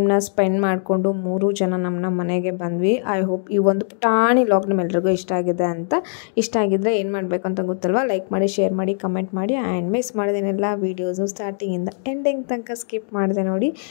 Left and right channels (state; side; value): silent; right; 58 dB below the other